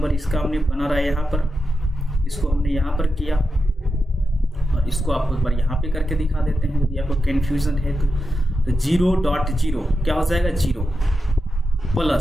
इसका हमने बना रहा है यहाँ पर, इसको हमने यहाँ पर किया और इसको आपको एक बार यहाँ पे करके दिखा देते हैं यदि आपको कन्फ्यूजन है तो 0.0 क्या हो जाएगा 0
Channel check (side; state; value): both; normal; correlation 0.89